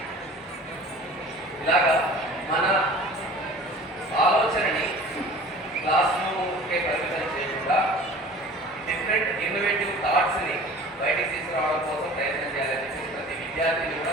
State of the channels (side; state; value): both; normal; correlation 0.44